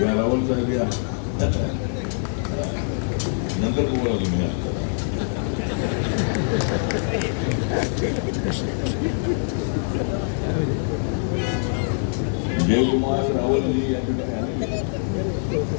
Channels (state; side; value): silent; right; 63 dB below the other